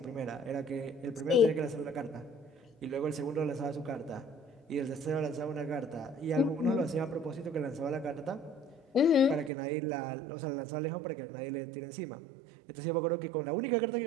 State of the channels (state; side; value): drops out; left; at 9.5 s